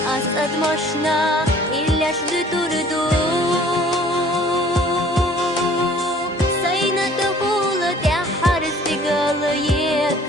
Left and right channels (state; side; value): normal; both; correlation 0.53